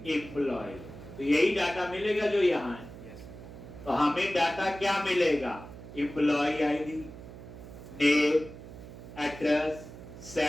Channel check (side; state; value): right; noise; hum, 14 dB below the sound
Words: एम्प्लॉय, तो यही डाटा मिलेगा जो यहाँ है। तो हमें डाटा क्या मिलेगा, employee ID, name, address,